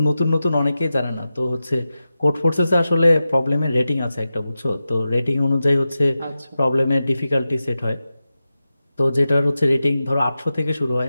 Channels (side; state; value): both; inverted; correlation -0.93